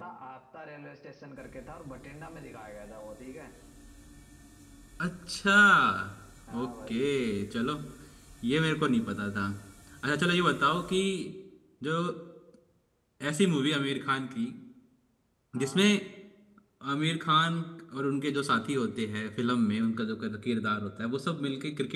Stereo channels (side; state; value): both; identical; correlation 1.00